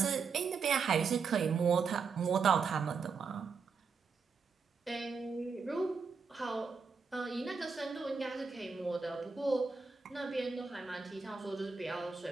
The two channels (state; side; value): quieter; left; 5.3 dB